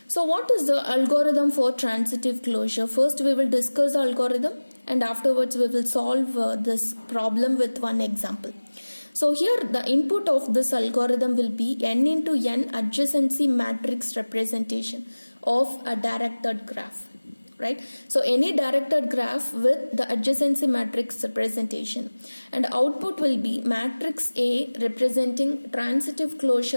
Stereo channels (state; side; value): inverted; both; correlation -1.00